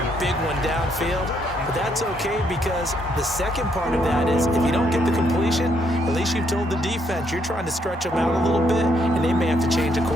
a big one downfield. But that's okay because the second part of that is if you don't get the completion, at least you've told the defense you're trying to stretch them out a little bit, and they may have to change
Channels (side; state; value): both; normal; correlation 0.73